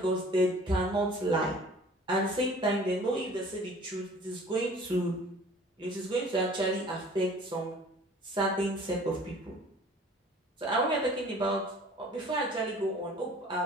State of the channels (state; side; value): normal; both; correlation 0.49